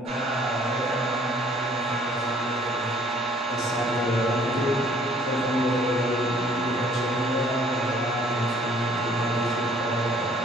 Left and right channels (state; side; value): normal; both; correlation 0.59